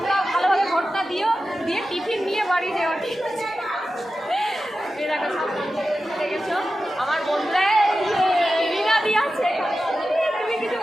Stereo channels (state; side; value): normal; both; correlation 0.93